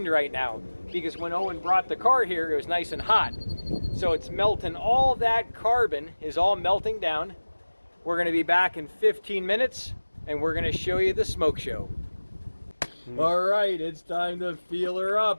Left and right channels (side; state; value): both; inverted; correlation -1.00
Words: right now, because when Owen brought the car here, it was nice and hot. So it's melting, all that carbon is all melting down. We're gonna be back in 15 minutes, and we're gonna show you the smoke show. All right, it's time to feel her